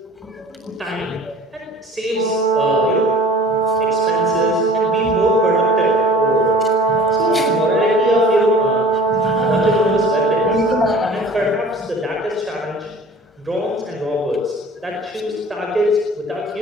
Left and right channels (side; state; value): both; normal; correlation 0.46